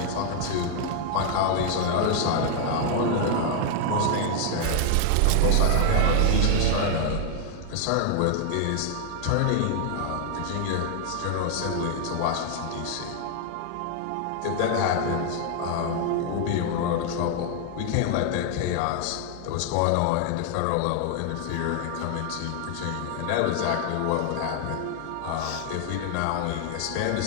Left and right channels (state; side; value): different; both; correlation 0.00